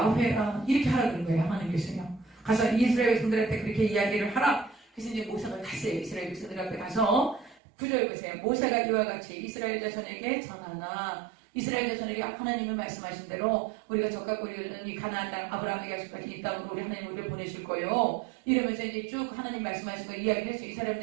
이렇게 하라 그런 거예요. 하나님께서요. 가서 이스라엘 백성들한테 그렇게 이야기를 하라. 그래서 이제 모세가 갔어요. 이스라엘 백성들 앞에 가서 9절 보세요. 모세가 이와 같이 이스라엘 자손에게 전하나. 이스라엘 자손에게 하나님이 말씀하신 대로 우리가 적과 우리는 이 가나안 땅 아브라함에게 약속하신 이 땅으로 우리 하나님 우리를 보내실 거예요. 이러면서 이제 쭉 하나님 말씀하신 거 이야기를 해서 이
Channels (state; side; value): drops out; left; at 7.6 s